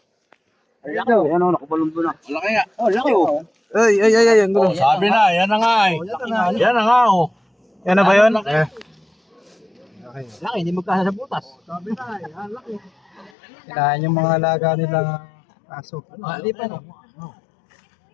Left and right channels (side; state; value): right; drops out; at 13.3 s